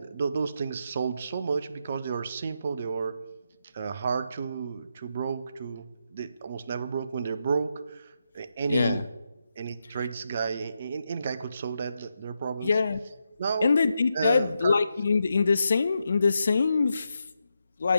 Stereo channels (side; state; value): both; inverted; correlation -0.84